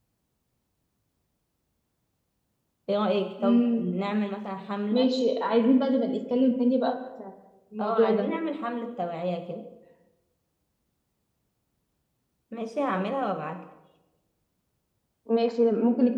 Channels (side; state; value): both; identical; correlation 1.00